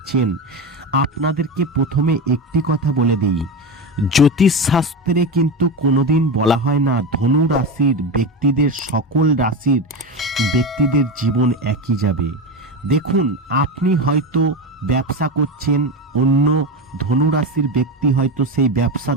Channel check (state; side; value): normal; both; correlation 0.18